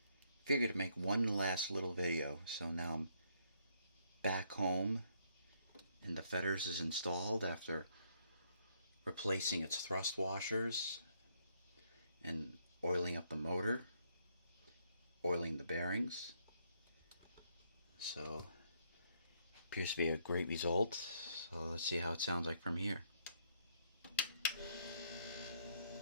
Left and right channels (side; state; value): both; inverted; correlation -0.71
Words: figured to make one last little video. So now I'm back home and the Fetters is installed after replacing its thrust washers and oiling up the motor, oiling the bearings. So appears to be a great result. So let's see how it sounds like from here.